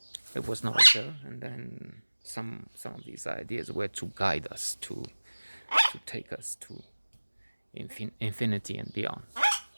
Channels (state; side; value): inverted; both; correlation -1.00